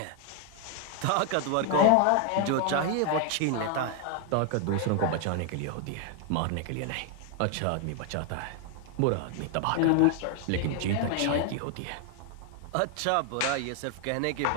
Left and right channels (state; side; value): different; both; correlation 0.00